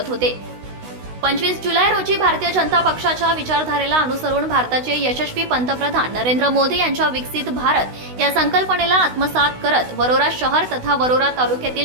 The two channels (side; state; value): left; late; 16 ms